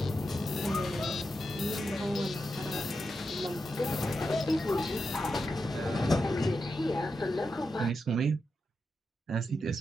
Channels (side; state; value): both; normal; correlation 0.88